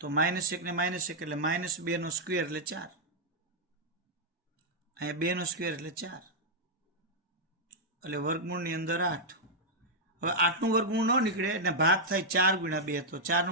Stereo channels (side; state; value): both; normal; correlation -0.04